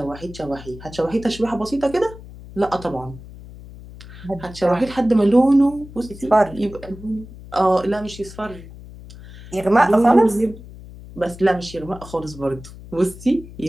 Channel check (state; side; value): noise; left; hum, 16 dB below the sound